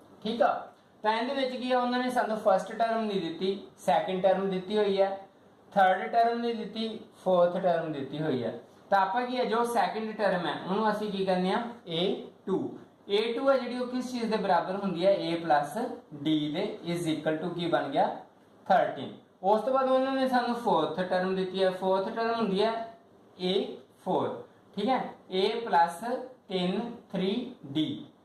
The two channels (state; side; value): identical; both; correlation 1.00